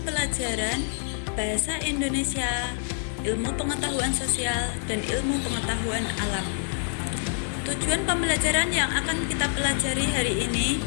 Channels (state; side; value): silent; right; digital silence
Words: pelajaran bahasa Indonesia, ilmu pengetahuan sosial, dan ilmu pengetahuan alam. Tujuan pembelajaran yang akan kita pelajari hari ini